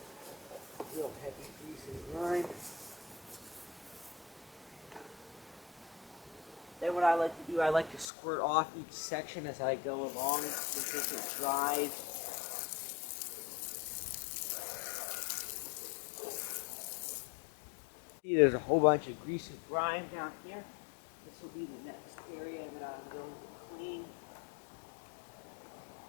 Real heavy grease and grime. Then what I like to do, I like to squirt off each section as I go along because it dries. See, there's a whole bunch of grease and grime down here. This will be the next area that I'm going to clean.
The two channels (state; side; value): drops out; right; at 8.1 s